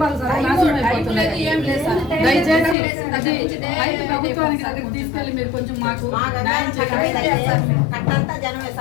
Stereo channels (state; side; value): drops out; right; at 2.8 s